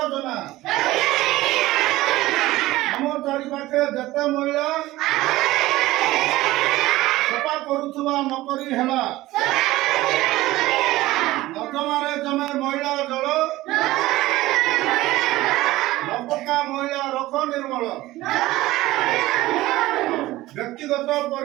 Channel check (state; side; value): quieter; left; 17.4 dB